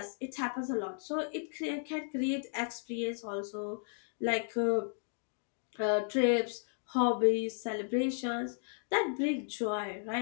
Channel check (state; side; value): silent; right; digital silence